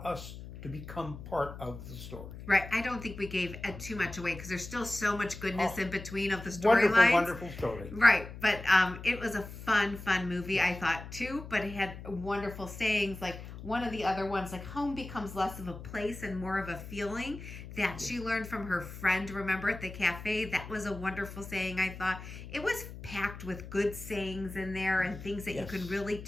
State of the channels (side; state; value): left; noise; hum, 12 dB below the sound